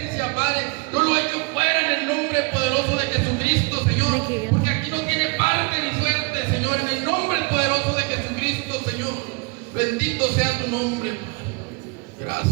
Padre, yo lo echo fuera en el nombre poderoso de Jesucristo, Señor, porque aquí no tiene parte ni suerte, Señor, en el nombre poderoso de Jesucristo, Señor. Bendito sea tu nombre, Padre.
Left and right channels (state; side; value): quieter; left; 29.4 dB